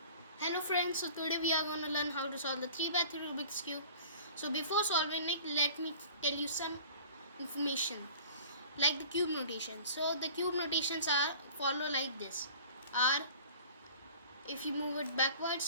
Hello friends, so today we are going to learn how to solve the 3x3 Rubik's Cube. So before solving it, let me tell you some information like the cube notation. So the cube notations are follow like this. R, if you move it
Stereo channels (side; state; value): both; inverted; correlation -0.45